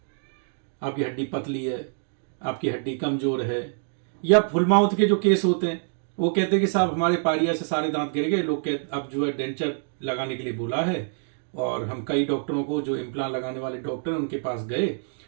आपकी हड्डी पतली है, आपकी हड्डी कमजोर है, या फुल माउथ के जो केस होते हैं वो कहते हैं कि साहब हमारे पारिया से सारे दांत गिर गए, लोग कहते अब जो है डेंचर लगाने के लिए बोला है। और हम कई डॉक्टरों को, जो इम्प्लांट लगाने वाले डॉक्टर उनके पास गए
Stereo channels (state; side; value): silent; left; digital silence